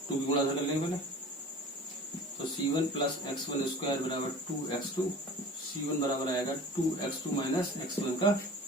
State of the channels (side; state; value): both; normal; correlation 0.40